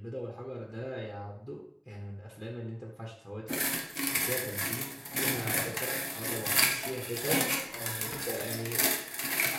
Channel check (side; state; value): both; identical; correlation 1.00